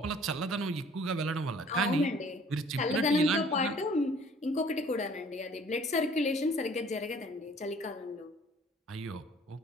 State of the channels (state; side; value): normal; both; correlation 0.55